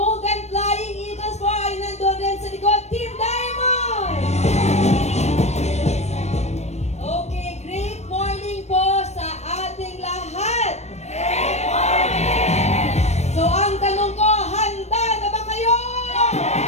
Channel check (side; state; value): right; late; 0.32 ms